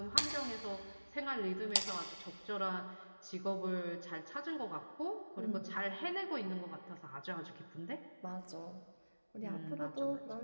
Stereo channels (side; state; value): both; inverted; correlation -1.00